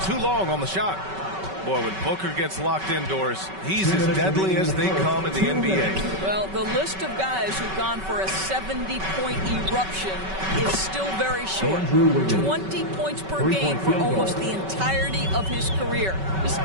too long on the shot. Boy, when Booker gets locked indoors, he's as deadly as they come in the NBA. Well, the list of guys who've gone for a 70-point eruption is still very short. 20 points per game for almost the entirety of his career. This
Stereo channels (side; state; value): left; late; 5.3 ms